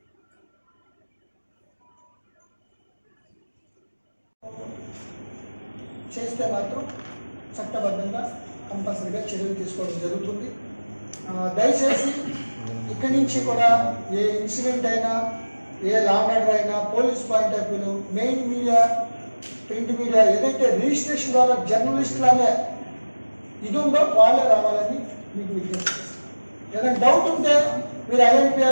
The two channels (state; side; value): inverted; both; correlation -1.00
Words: చేస్తే మాత్రం చట్టబద్ధంగా కంపల్సరీగా చర్యలు తీసుకోవడం జరుగుతుంది. దయచేసి ఇక్కడి నుంచి కూడా ఏ ఇన్సిడెంట్ అయినా, ఏ లా అండ్ ఆర్డర్ అయినా, పోలీస్ పాయింట్ ఆఫ్ వ్యూలో మెయిన్ మీడియా, ప్రింట్ మీడియా ఏదైతే రిజిస్ట్రేషన్ ద్వారా జర్నలిస్టులనే ఇది ఉందో వాళ్ళే రావాలని మీకు విజ్ఞప్తి చేస్తాను. ఏదైనా డౌట్ ఉంటే మీరు